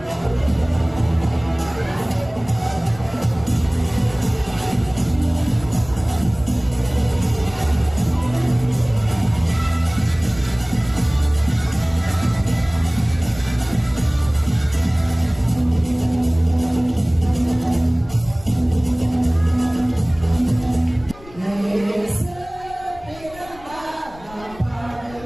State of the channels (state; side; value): noise; left; rumble, 21 dB below the sound